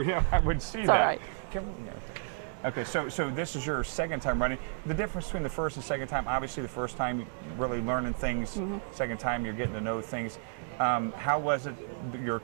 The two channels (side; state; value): left; silent; digital silence